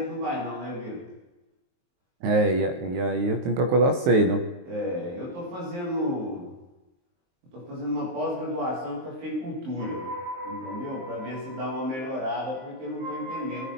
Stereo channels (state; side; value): late; left; 23 ms